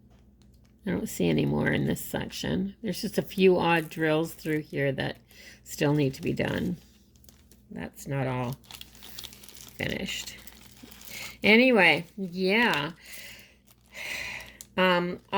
I don't see any more in this section. There's just a few odd drills through here that still need to be done. That's not all finished. Anyway, yeah. I'm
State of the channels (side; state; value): both; identical; correlation 1.00